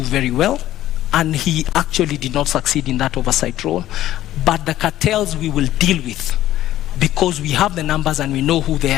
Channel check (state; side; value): quieter; right; 13.7 dB